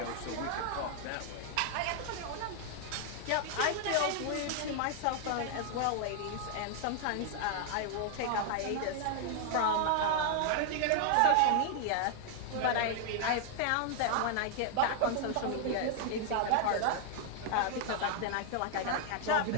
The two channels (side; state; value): both; different; correlation 0.00